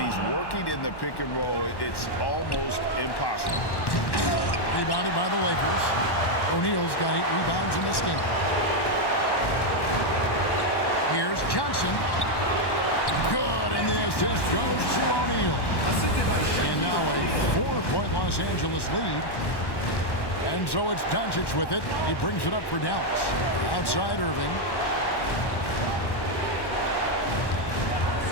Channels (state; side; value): late; right; 1.1 ms